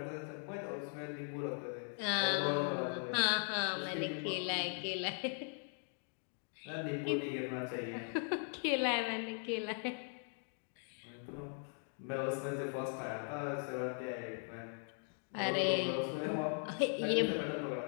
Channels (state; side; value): silent; right; 52 dB below the other